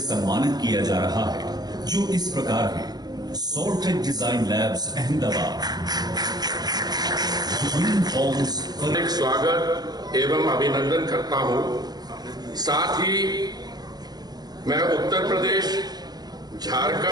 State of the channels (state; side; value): late; left; 0.19 ms